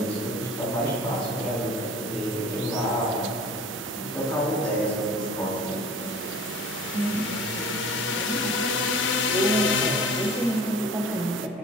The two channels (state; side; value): normal; both; correlation 0.43